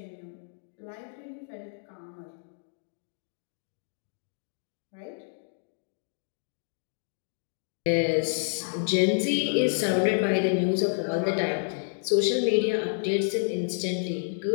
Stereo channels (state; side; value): silent; right; digital silence